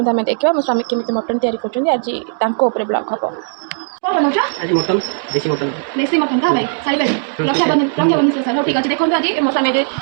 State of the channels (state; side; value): silent; left; digital silence